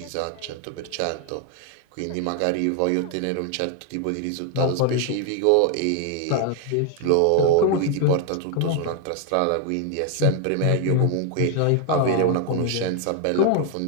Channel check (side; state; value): both; different; correlation 0.00